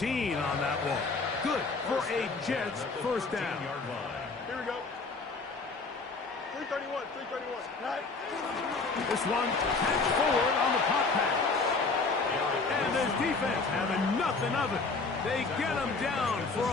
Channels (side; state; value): right; quieter; 4.1 dB